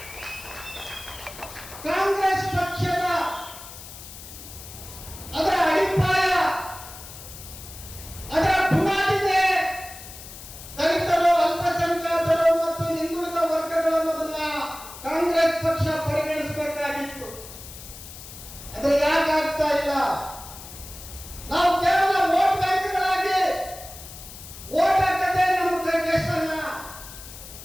ಕಾಂಗ್ರೆಸ್ ಪಕ್ಷದ ಅದರ ಅಡಿಪಾಯ, ಅದರ ಬುನಾದಿಗೆ ದಲಿತರು, ಅಲ್ಪಸಂಖ್ಯಾತರು ಮತ್ತು ಹಿಂದುಳಿದ ವರ್ಗಗಳು ಅನ್ನೋದನ್ನ ಕಾಂಗ್ರೆಸ್ ಪಕ್ಷ ಪರಿಗಣಿಸಬೇಕಾಗಿತ್ತು. ಅದು ಯಾಕಾಗ್ತಾ ಇಲ್ಲ? ನಾವು ಕೇವಲ ವೋಟ್ ಬ್ಯಾಂಕ್ಗಳಾಗಿ ವೋಟ್ ಹಾಕದೆ ನಮ್ಮ ಕೈಗೆಷ್ಟನ್ನ?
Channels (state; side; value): noise; left; hiss, 14 dB below the sound